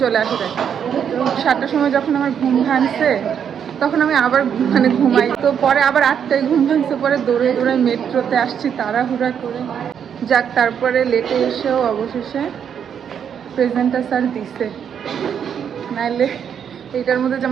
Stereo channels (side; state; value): left; quieter; 8.1 dB